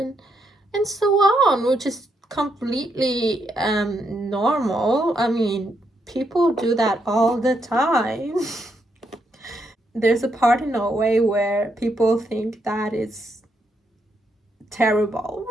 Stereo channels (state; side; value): normal; both; correlation 0.79